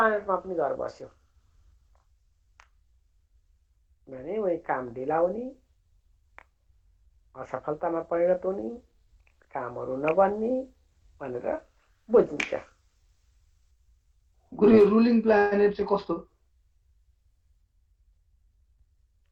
पनि गएर बस्यो भने वही काम ढिला हुने, असफलतामा परिणत हुने, कामहरू नबन्ने भनेर बुझिन्छ। गुरु रुलिङ प्लानेट चाहिँ कस्तो?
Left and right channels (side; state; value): both; identical; correlation 1.00